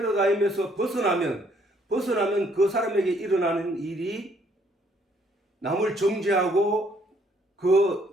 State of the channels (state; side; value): normal; both; correlation 0.66